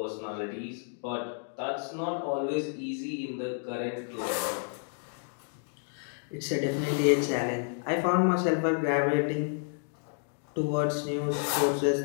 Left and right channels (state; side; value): silent; right; 57 dB below the other